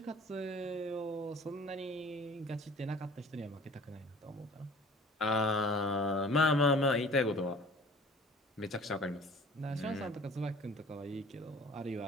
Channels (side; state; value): both; normal; correlation 0.48